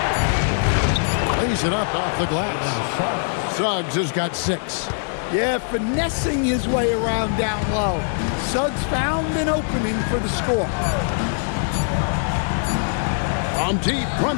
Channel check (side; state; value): right; silent; digital silence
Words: Lays it up off the glass. Suggs has got 6. Yeah, finessing his way around down low. Suggs found an opening for the score. On deep,